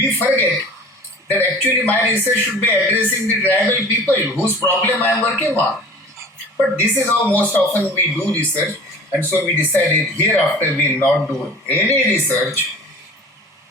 forget that actually my research should be addressing the tribal people whose problem I am working on. But this is how most often we do research, and so we decided hereafter we will not do any research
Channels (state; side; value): normal; both; correlation 0.43